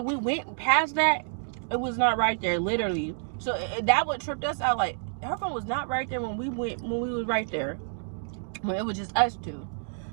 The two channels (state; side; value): silent; left; digital silence